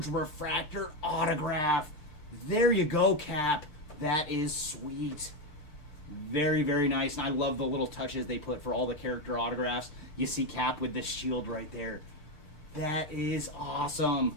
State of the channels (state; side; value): late; right; 6.7 ms